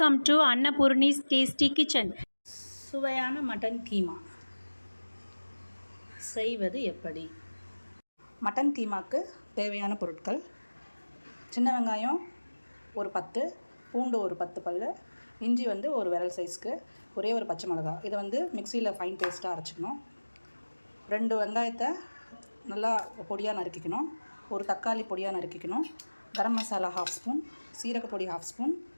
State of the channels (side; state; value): both; inverted; correlation -1.00